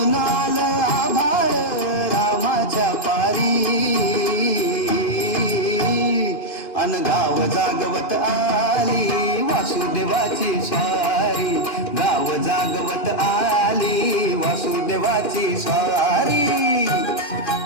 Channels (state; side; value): late; right; 2.8 ms